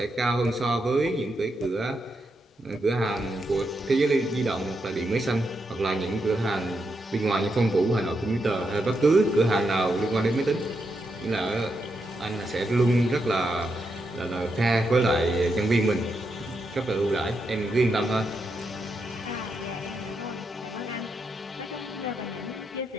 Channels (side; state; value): both; normal; correlation 0.83